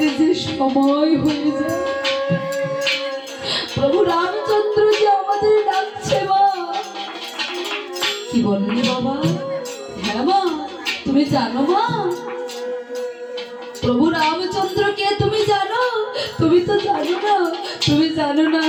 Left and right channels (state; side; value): identical; both; correlation 1.00